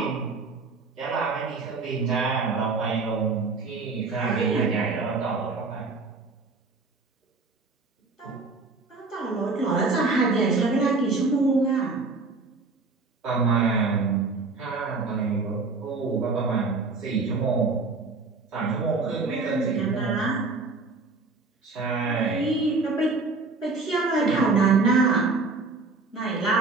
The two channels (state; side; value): quieter; left; 3.9 dB